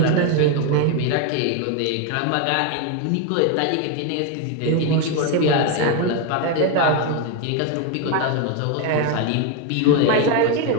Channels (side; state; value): both; different; correlation 0.02